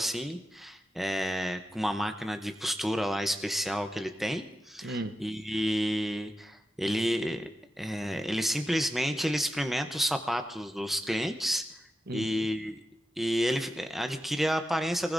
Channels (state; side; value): normal; both; correlation 0.90